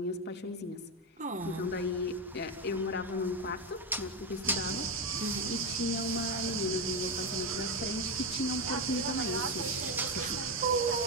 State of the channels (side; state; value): both; normal; correlation 0.11